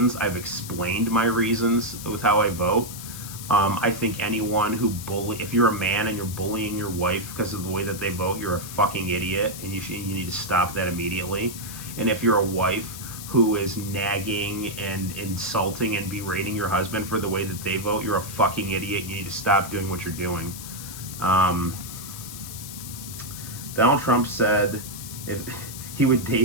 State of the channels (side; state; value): left; noise; hiss, 11 dB below the sound